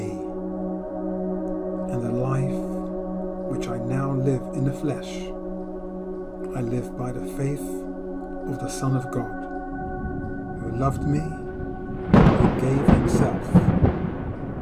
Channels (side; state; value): both; identical; correlation 1.00